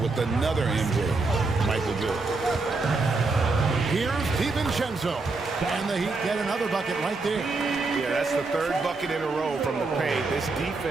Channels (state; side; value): quieter; left; 3.7 dB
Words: another MJ, Michael Jordan. Here's DiVincenzo, and the Heat get another bucket right there. Yeah, that's the 3rd bucket in a row from the paint. This